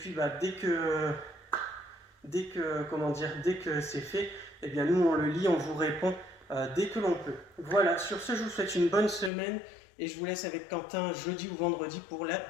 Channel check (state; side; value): drops out; right; at 9.3 s